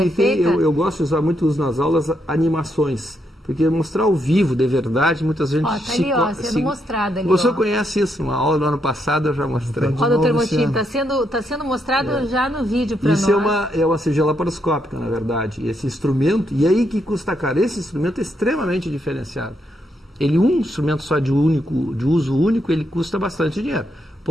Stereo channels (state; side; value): normal; both; correlation 0.78